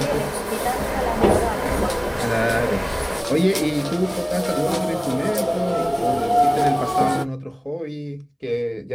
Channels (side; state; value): both; identical; correlation 1.00